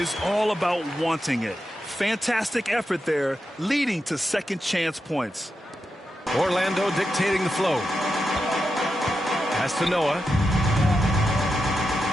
all about wanting it. Fantastic effort there, leading to second chance points. Orlando dictating the flow. Pass to Noah.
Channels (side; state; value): both; normal; correlation 0.88